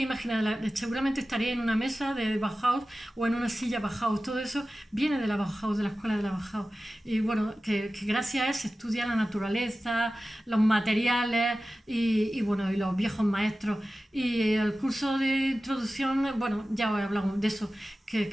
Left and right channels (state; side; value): normal; both; correlation 0.95